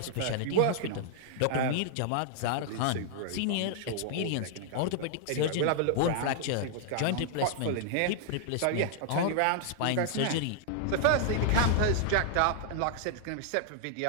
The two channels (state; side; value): different; both; correlation 0.00